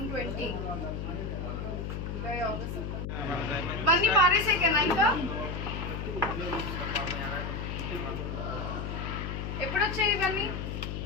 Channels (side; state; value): left; noise; hum, 4 dB below the sound